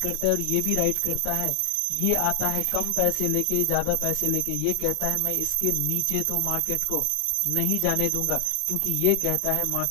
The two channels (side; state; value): both; different; correlation 0.00